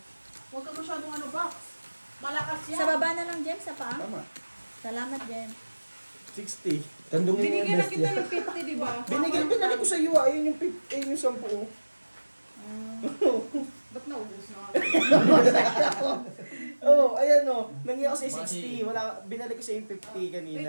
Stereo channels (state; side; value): inverted; both; correlation -1.00